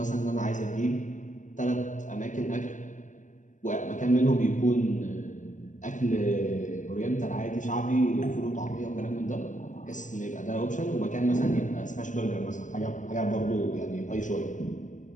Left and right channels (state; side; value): late; right; 0.37 ms